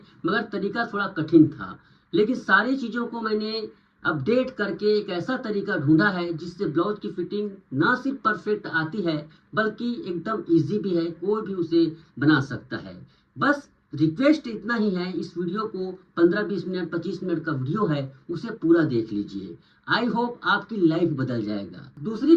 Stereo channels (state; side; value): identical; both; correlation 1.00